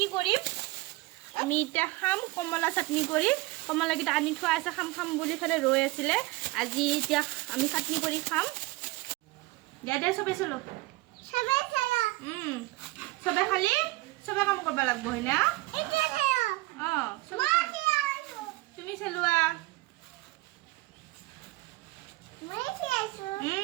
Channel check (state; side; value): quieter; left; 21.1 dB